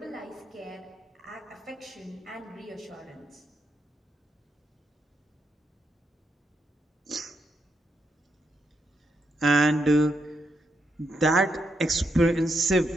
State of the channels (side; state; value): both; normal; correlation 0.82